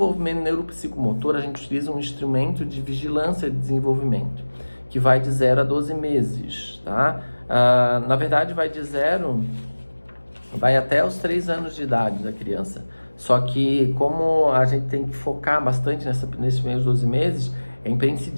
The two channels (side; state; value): both; inverted; correlation -1.00